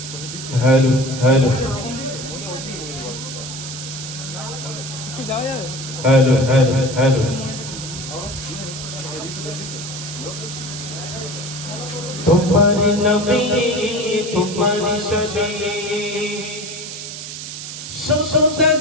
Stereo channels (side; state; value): right; noise; hiss, 9 dB below the sound